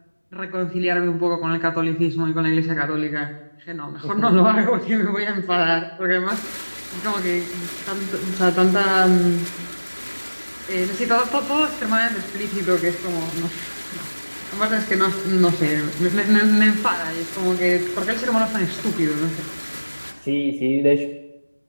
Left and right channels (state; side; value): inverted; both; correlation -1.00